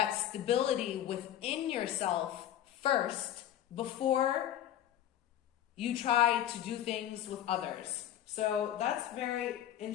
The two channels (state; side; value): quieter; right; 11.5 dB